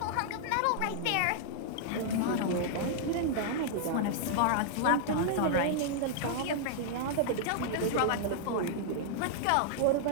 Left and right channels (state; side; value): different; both; correlation -0.01